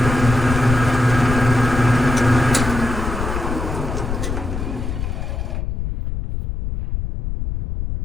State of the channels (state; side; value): noise; left; rumble, 4 dB below the sound